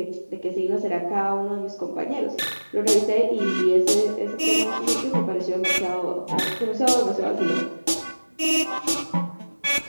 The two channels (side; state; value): both; inverted; correlation -1.00